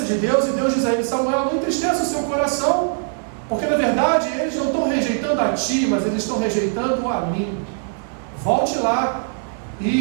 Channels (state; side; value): silent; left; digital silence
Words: de Deus, e Deus diz a ele: Samuel, não entristeça o seu coração, porque na verdade eles não estão rejeitando a ti, mas eles estão rejeitando a mim. Volte lá